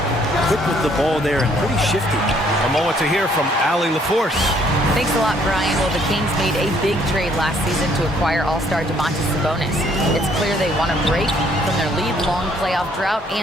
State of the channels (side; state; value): both; normal; correlation 0.65